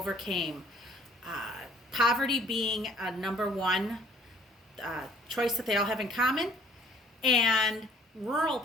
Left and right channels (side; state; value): both; normal; correlation 0.58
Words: Poverty being a number one choice that they all have in common, and rural